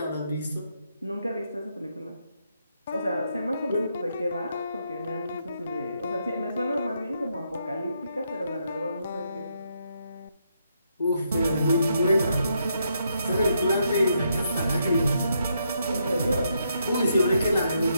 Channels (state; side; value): inverted; both; correlation -0.78